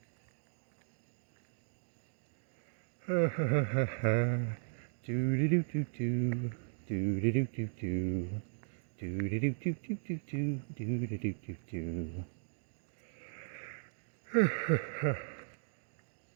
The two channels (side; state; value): left; silent; digital silence